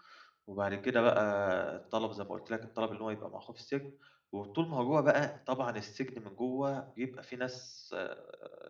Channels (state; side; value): identical; both; correlation 1.00